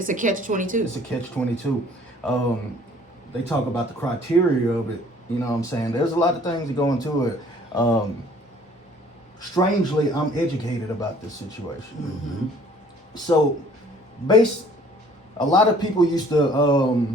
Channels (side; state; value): both; normal; correlation 0.55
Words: a catch-22. It's a catch-22. They talk about the criteria of it. You know what I'm saying? There's a lot of things that go into it. Strangely, I'm educated about this situation. So, a lot of people used to